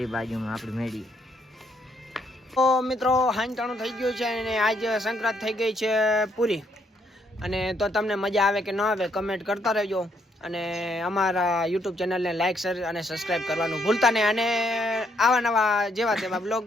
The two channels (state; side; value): normal; both; correlation 0.72